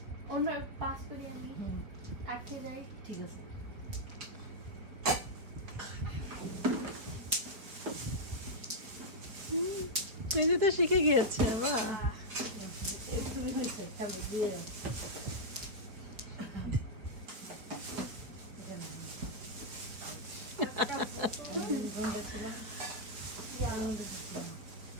অন্য পাস করে আমি আটকে যাই। ঠিক আছে মেজে তো শিখে গিয়েছে বাহ একটু হয়েছে খাবো দিয়ে দাও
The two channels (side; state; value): left; late; 4.5 ms